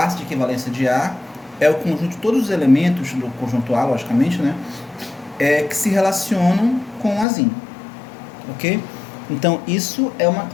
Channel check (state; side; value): drops out; right; at 7.2 s